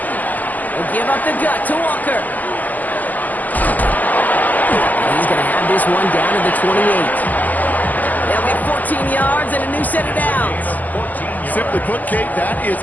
They'll give up the gut to Walker. And he's going to have this one down to the 28. They'll get 14 yards and a new set of downs. Simply put, Kate, that is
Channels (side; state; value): right; late; 0.082 ms